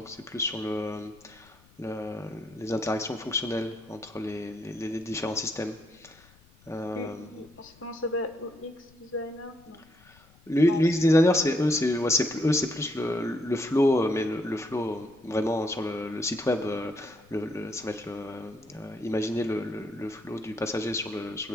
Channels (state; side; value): noise; left; rumble, 28 dB below the sound